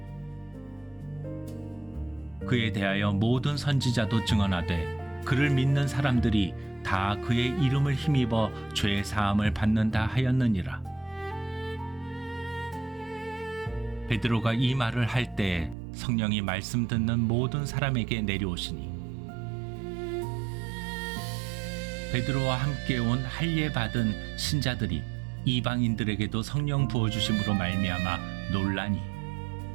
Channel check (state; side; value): drops out; left; at 15.8 s